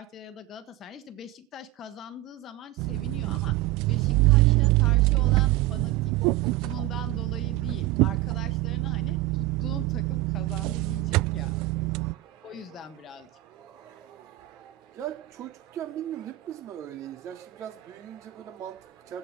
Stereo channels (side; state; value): left; quieter; 16.4 dB